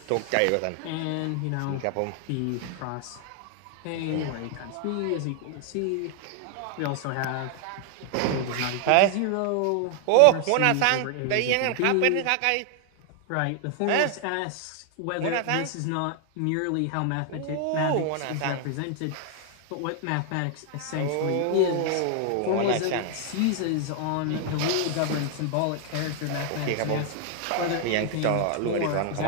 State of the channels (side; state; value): both; different; correlation 0.00